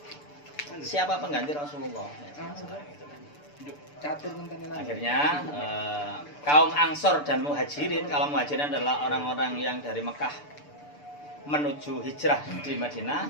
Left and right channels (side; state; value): right; late; 6.8 ms